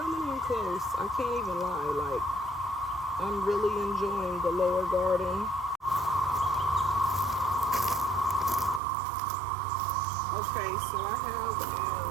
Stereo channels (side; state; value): left; drops out; at 8.8 s